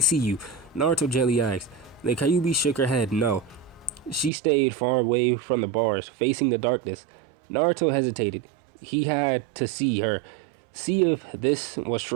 you, Naruto gently asked. The Kyuubi shook her head, no. She stayed far away from the bars, facing the darkness. Naruto hesitated. He had to see her, see if this was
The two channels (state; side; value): drops out; left; at 4.3 s